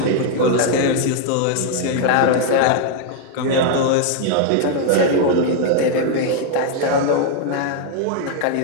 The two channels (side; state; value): both; different; correlation 0.00